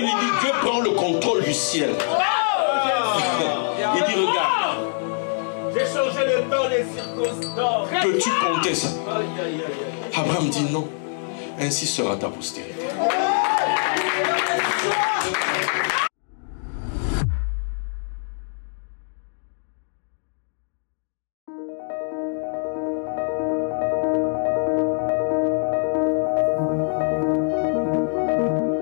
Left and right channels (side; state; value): right; silent; digital silence